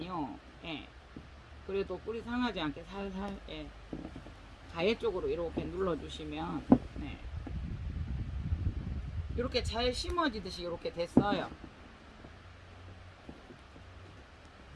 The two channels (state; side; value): identical; both; correlation 1.00